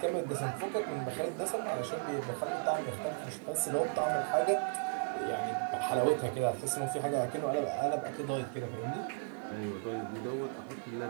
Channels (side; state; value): left; silent; 54 dB below the other